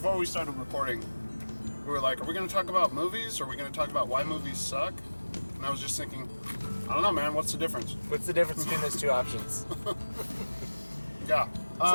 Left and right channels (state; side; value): inverted; both; correlation -1.00